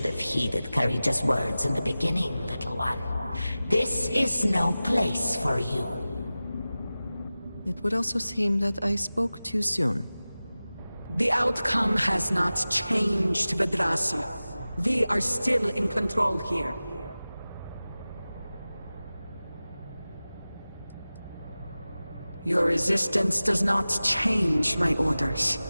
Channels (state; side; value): inverted; both; correlation -0.96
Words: have heeded Karija's words in the beginning, little one. This is no place for you. It would also seem that I spoke too soon. The outcome has not changed, Vedrasi. We are still in control here. Your resistance does not change my orders.